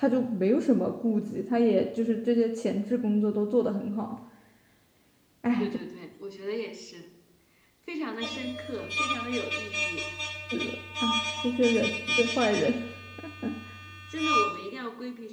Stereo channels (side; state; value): both; identical; correlation 1.00